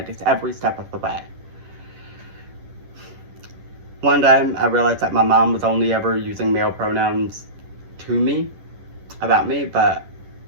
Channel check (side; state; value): left; late; 10 ms